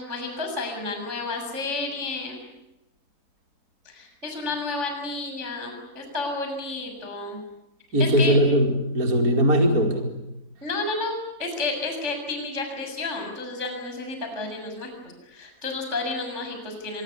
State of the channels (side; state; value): left; late; 3.5 ms